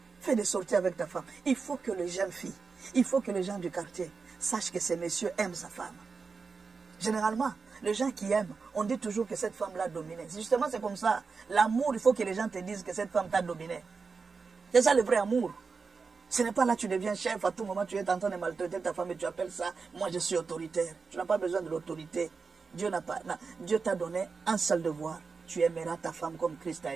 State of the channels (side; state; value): left; quieter; 4.8 dB